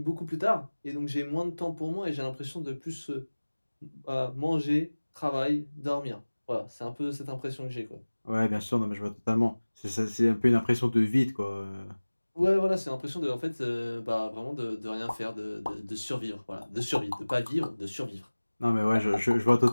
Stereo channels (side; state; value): both; inverted; correlation -1.00